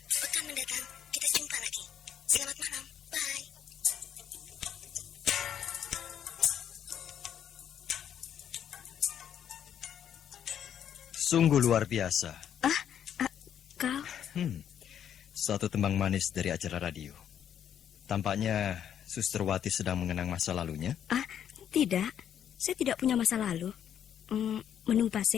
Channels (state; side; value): quieter; right; 9.4 dB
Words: pekan mendatang kita jumpa lagi. Selamat malam, bye. Sungguh luar biasa. Kau? Satu tembang manis dari acara radio. Tampaknya Suster Wati sedang mengenang masa lalunya. Tidak. Saya tidak punya masa lalu. Menunggu